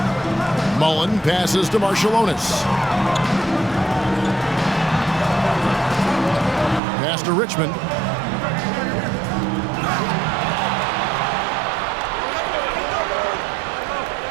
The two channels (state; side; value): drops out; left; at 6.8 s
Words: Mullen passes to Marciulionis. Pass to Richmond.